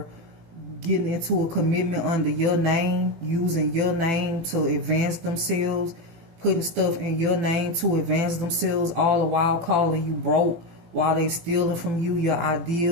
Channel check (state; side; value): late; left; 18 ms